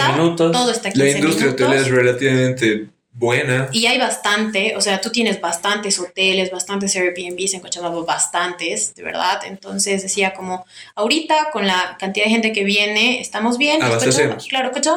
minutos, todo está a 15 minutos. La industria hotelera es relativamente buena. Y hay bastante, o sea, tú tienes bastantes hoteles, bastantes Airbnbs en Cochabamba, bastantes, de verdad. Entonces decía como, ahorita con la cantidad de gente que viene, estamos bien. Claro,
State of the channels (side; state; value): both; identical; correlation 1.00